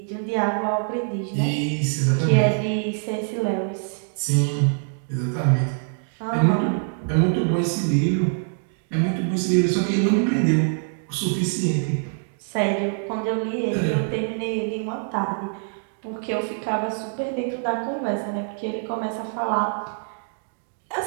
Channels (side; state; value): left; silent; digital silence